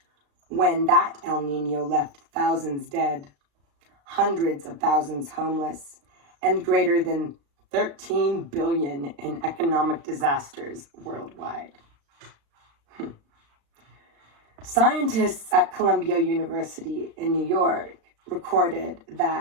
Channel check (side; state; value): left; late; 35 ms